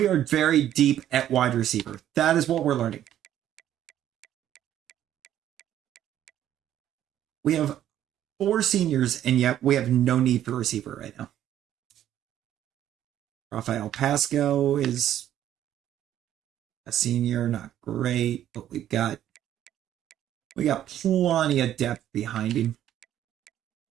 are very deep at wide receiver. That is what we're learning. We have 4 seniors, and yet we have no need for receiver right now. Rafael Pasco is a senior, not great, but we got plenty of depth behind him.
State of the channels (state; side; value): quieter; left; 11.5 dB